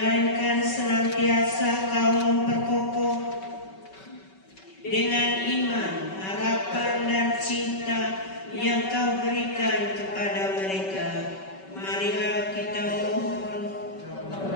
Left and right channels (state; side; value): late; right; 5.3 ms